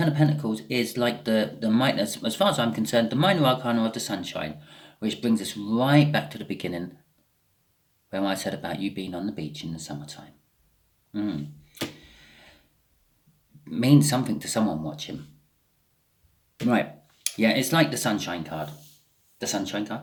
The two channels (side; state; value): both; identical; correlation 1.00